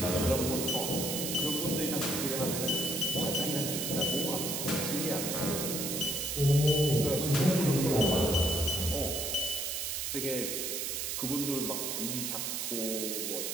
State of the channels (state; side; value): noise; right; hiss, 2 dB below the sound